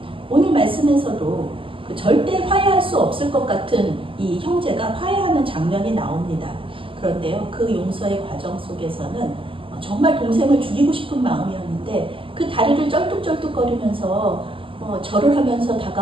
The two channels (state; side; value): late; left; 0.25 ms